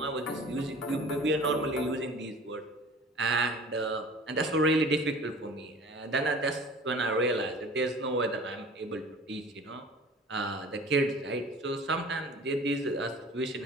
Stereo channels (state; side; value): normal; both; correlation 0.43